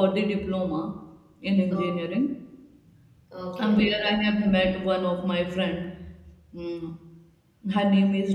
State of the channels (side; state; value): both; identical; correlation 1.00